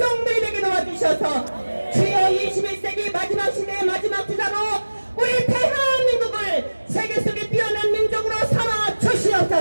되게 도와주셔서 주여 21세기 마지막 시대의 마지막 주자로 우리 대한민국을 세계 속에 뛰어난 민족으로 삼아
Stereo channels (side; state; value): both; inverted; correlation -1.00